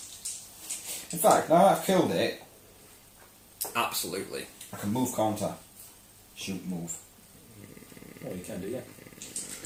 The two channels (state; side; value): identical; both; correlation 1.00